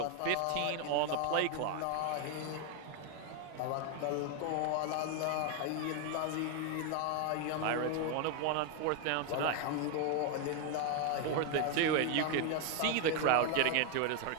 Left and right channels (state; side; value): different; both; correlation 0.01